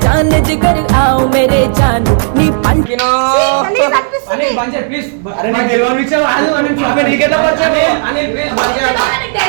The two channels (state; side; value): silent; left; digital silence